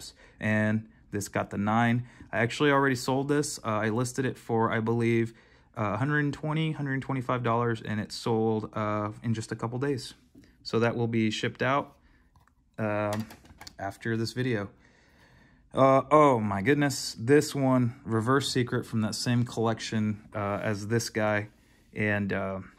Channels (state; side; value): identical; both; correlation 1.00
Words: and this got the 9. I actually already sold this. I listed it for, I believe, $120, $125, and it sold in just a couple days. So that will be shipped out after this video. Oh my goodness, this one, Reverse Secret from that same collection as this guy. And